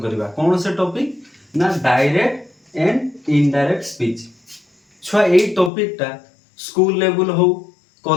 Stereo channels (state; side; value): drops out; right; at 5.7 s